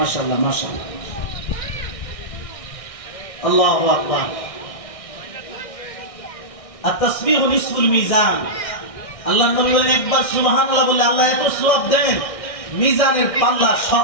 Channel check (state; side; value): late; right; 1.6 ms